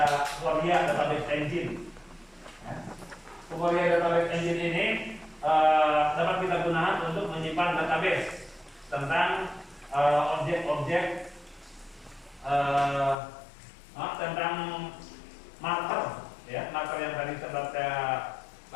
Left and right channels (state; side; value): drops out; right; at 13.2 s